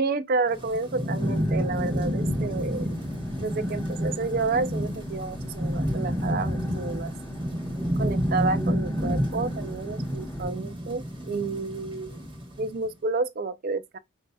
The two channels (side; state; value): both; normal; correlation 0.43